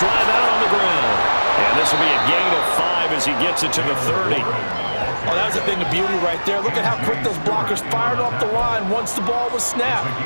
out on the ground. And this will be a gain of 5 as he gets it to the 30. Oh, that was a thing of beauty right there. Look at how quick those blockers fired off the line once the ball was snapped.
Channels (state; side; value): inverted; both; correlation -1.00